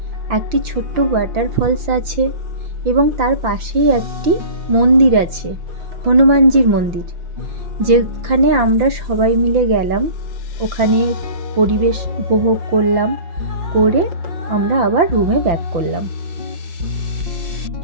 একটি ছোট্ট ওয়াটারফলস আছে এবং তার পাশেই একটি মন্দির আছে, হনুমানজির মন্দির, যেখানে আমরা সবাই মিলে গেলাম। ওখানে পরিবেশ উপভোগ করলাম, করে আমরা আবার রুমে ব্যাক করলাম।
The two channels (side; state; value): left; late; 5.9 ms